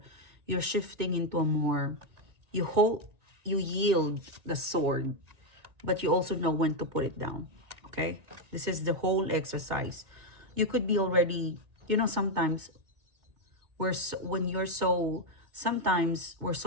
you're shifting into a more, you hold, you yield the sword, but you also know when to put it down. Okay, this is the whole exercise. You could be already, sometimes when you're so, sometimes we're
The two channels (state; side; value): late; left; 2.2 ms